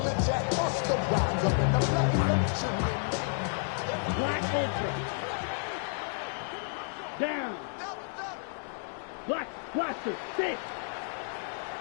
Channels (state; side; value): silent; right; digital silence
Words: Black Ultra. Down. Black Blaster. 6.